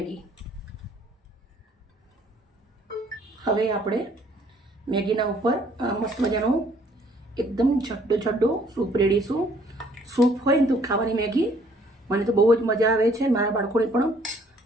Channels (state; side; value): normal; both; correlation 0.61